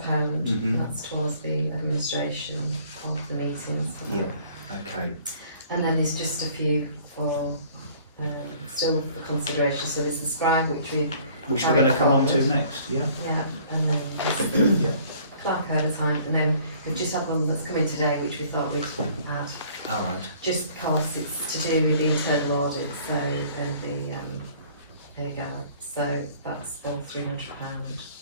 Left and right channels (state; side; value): inverted; both; correlation -0.55